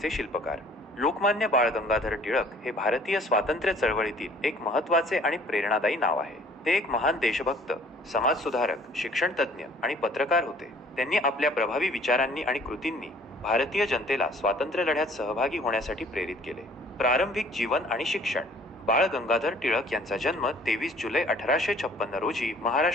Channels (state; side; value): normal; both; correlation 0.55